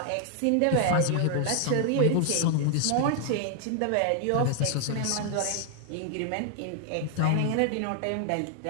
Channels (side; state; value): both; different; correlation 0.00